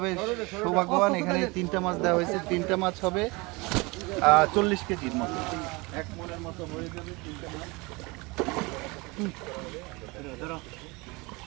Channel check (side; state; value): left; quieter; 25.5 dB